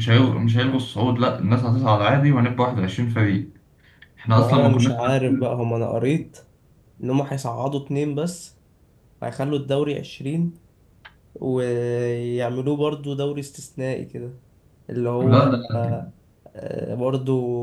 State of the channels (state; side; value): identical; both; correlation 1.00